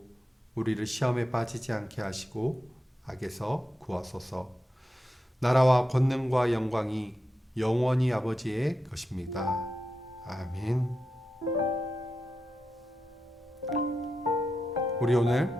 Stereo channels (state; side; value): normal; both; correlation 0.88